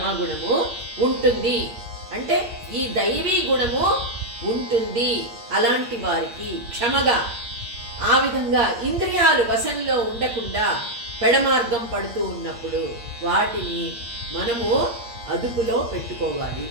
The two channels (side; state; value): left; late; 8.5 ms